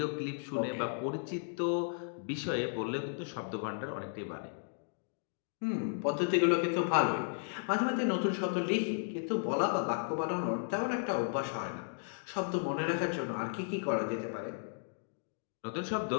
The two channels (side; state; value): right; silent; digital silence